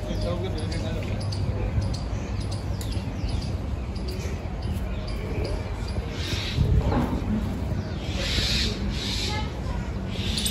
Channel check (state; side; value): identical; both; correlation 1.00